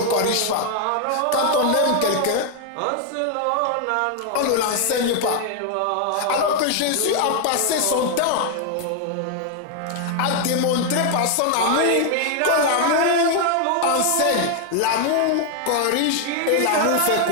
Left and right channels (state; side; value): different; both; correlation 0.00